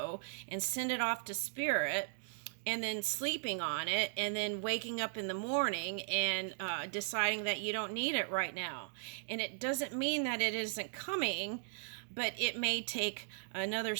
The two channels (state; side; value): silent; left; digital silence